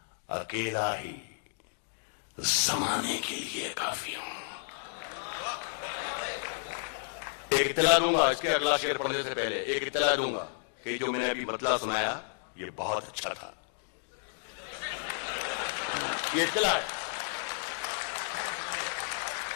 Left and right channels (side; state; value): right; silent; digital silence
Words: اکیلا ہی زمانے کے لیے کافی ہوں. ایک اطلاع دوں گا، اس کے اگلا شعر پڑھنے سے پہلے ایک اطلاع دوں گا کہ جو میں نے ابھی بدلہ سنایا یہ بہت اچھا تھا. یہ اطلاع ہے.